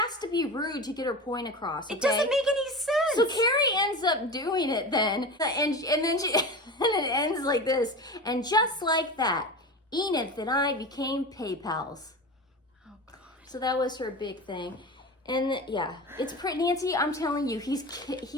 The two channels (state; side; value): normal; both; correlation 0.28